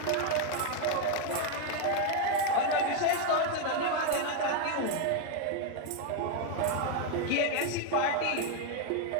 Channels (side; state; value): both; different; correlation 0.01